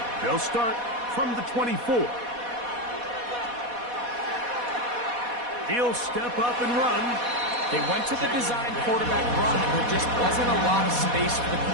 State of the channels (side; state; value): left; late; 4.1 ms